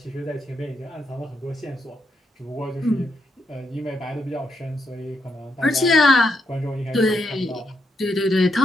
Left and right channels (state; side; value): normal; both; correlation 0.80